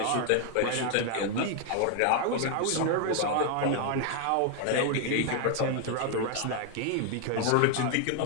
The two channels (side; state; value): both; different; correlation 0.00